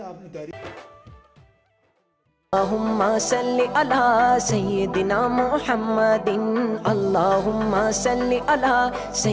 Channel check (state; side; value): identical; both; correlation 1.00